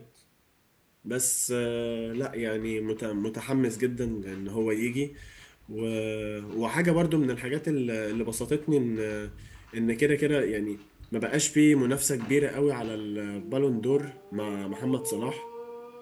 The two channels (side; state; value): both; identical; correlation 1.00